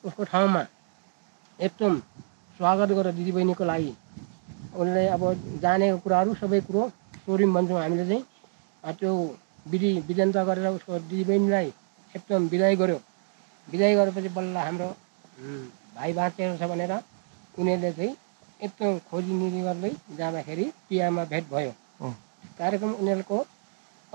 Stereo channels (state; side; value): silent; left; digital silence